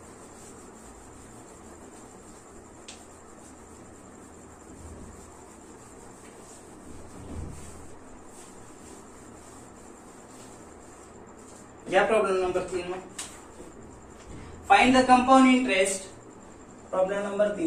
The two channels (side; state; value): both; identical; correlation 1.00